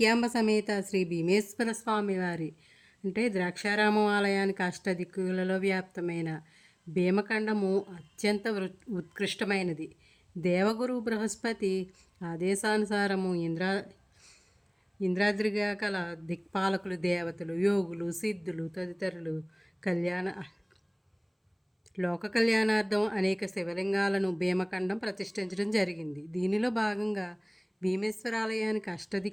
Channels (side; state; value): both; identical; correlation 1.00